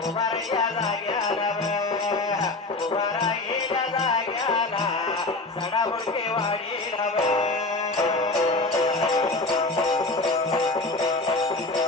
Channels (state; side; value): quieter; right; 3.1 dB